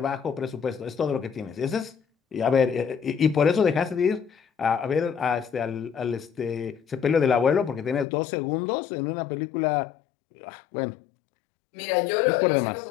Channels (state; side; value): drops out; right; at 8.1 s